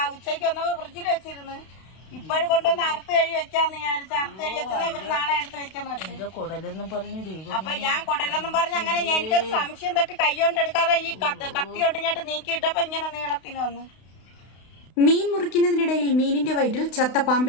ഉച്ചയ്ക്ക് വന്നപ്പോ ഫ്രിഡ്ജിൽ വെച്ചിരുന്നു. ഇപ്പോഴും കൊണ്ടുവന്ന് അറുത്ത് കഴി വെക്കാന്ന് വിചാരിച്ചു. അറുത്ത് കഴി വെച്ചത് ഇവര് നാളെ എടുത്ത് വെക്കാന്ന് വെച്ചു. കുടലെന്നും പറഞ്ഞു. അപ്പൊ ഞാൻ കുടലെന്നും പറഞ്ഞ് അങ്ങനെ എനിക്കൊരു സംശയം തട്ടി കൈകൊണ്ട് എടുക്കാതെ ഈ കത്തി കൊണ്ട് ഞാൻ നീക്കിയിട്ടപ്പോ ഇങ്ങനെ നീളത്തിന് വന്നു. മീൻ മുറിക്കുന്നതിനിടയിൽ മീനിന്റെ വയറ്റിൽ ചത്ത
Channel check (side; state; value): right; late; 32 ms